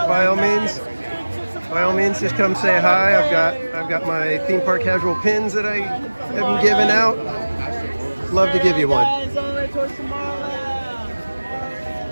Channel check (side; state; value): both; inverted; correlation -1.00